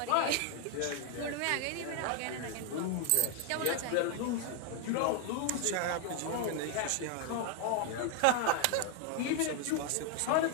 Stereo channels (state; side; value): different; both; correlation 0.00